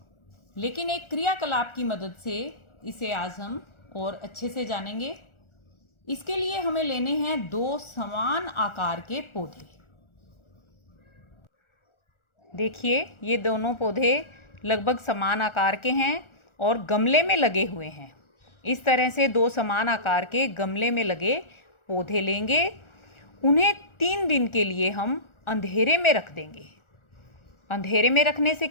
लेकिन एक क्रियाकलाप की मदद से इसे आज हम और अच्छे से जानेंगे। इसके लिए हमें लेने हैं दो समान आकार के पौधे। देखिए, ये दोनों पौधे लगभग समान आकार के हैं और गमले में लगे हुए हैं। इस तरह से दो समान आकार के गमले में लगे पौधे लेंगे। उन्हें 3 दिन के लिए हम अंधेरे में रख देंगे। अंधेरे में रखने से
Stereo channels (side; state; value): right; late; 1.4 ms